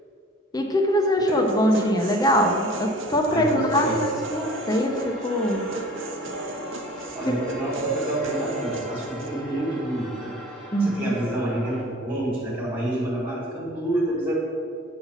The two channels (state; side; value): normal; both; correlation 0.45